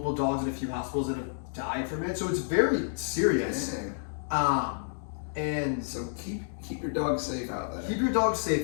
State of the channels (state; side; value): silent; right; digital silence